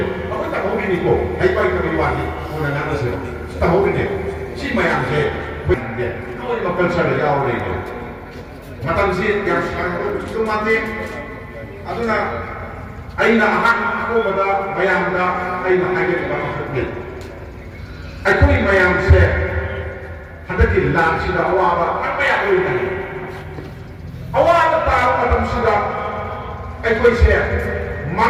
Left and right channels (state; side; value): identical; both; correlation 1.00